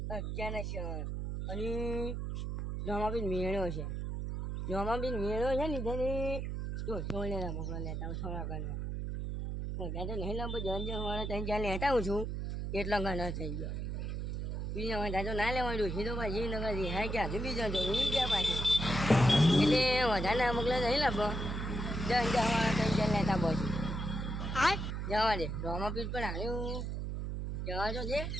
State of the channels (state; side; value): noise; right; hum, 3 dB below the sound